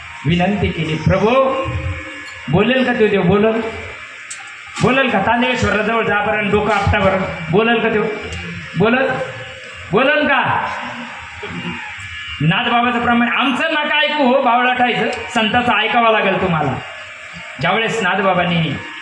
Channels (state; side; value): identical; both; correlation 1.00